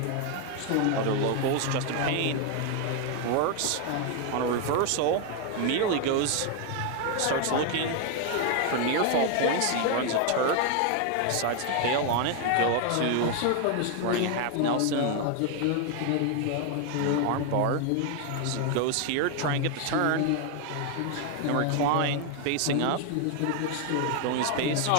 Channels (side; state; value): both; different; correlation 0.01